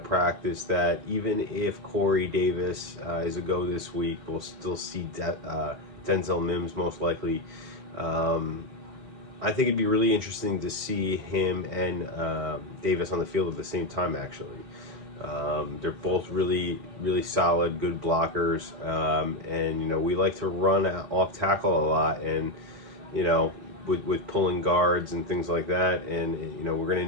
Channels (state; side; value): late; left; 4.1 ms